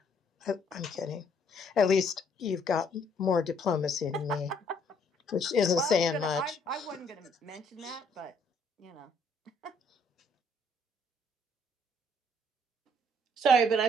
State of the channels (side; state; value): both; normal; correlation 0.65